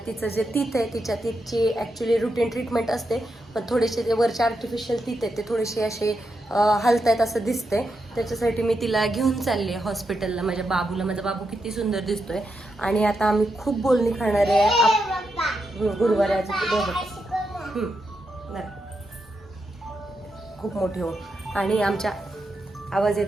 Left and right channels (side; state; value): both; normal; correlation 0.84